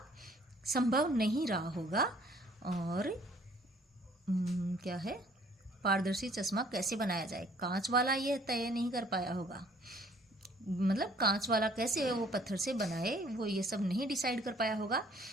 संभव नहीं रहा होगा। और क्या है, पारदर्शी चश्मा कैसे बनाया जाए, कांच वाला ये तय नहीं कर पाया होगा। मतलब कांच वाला कैसे वो पत्थर से बनाए, वो ये सब नहीं डिसाइड कर पाया होगा।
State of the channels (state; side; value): normal; both; correlation 0.58